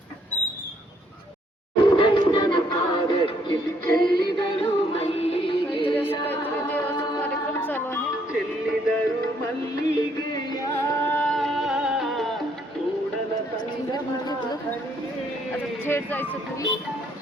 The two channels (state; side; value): normal; both; correlation 0.69